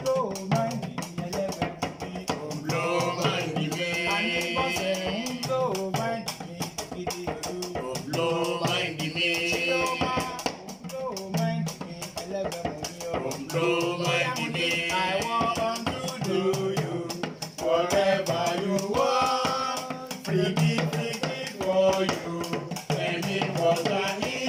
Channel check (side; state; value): both; identical; correlation 1.00